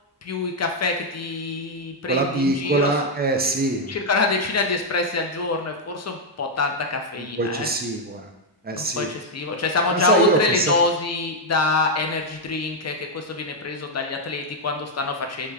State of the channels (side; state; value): both; normal; correlation 0.00